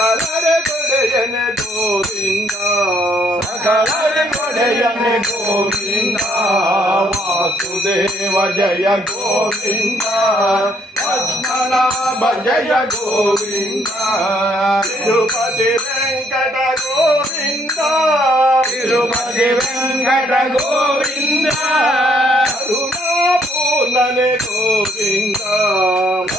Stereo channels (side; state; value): both; normal; correlation 0.69